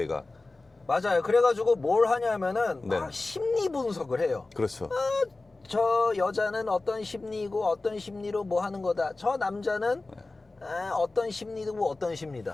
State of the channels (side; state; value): right; quieter; 3.3 dB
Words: 맞아요. 그래가지고 뭘 하냐면은 막 네. 심리 분석을 해요. 그렇죠. 저 여자는 어떤 심리고 어떤 심리로 뭐 하는 거다. 저 남자는 어떤 심리고 어떤